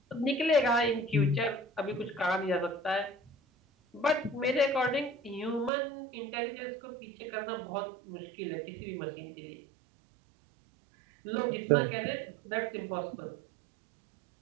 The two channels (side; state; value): left; drops out; at 5.7 s